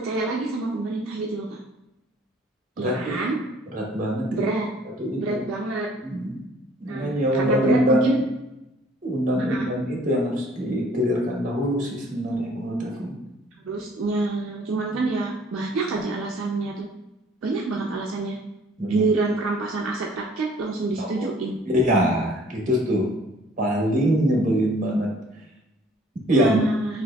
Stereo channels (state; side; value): normal; both; correlation 0.56